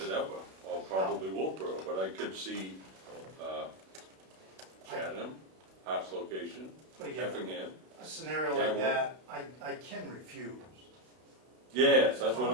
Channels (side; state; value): left; late; 32 ms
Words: it ever, or probably Wolfboro, but I could see Chatham, Hart's location, But again, Effingham. a scenario like that, I can refuse. Yes, that's